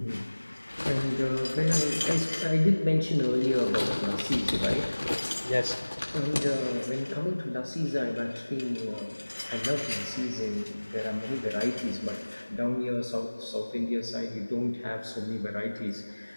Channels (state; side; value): inverted; both; correlation -1.00